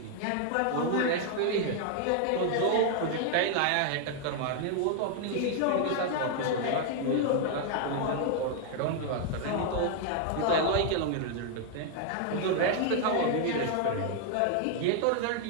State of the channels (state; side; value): different; both; correlation 0.00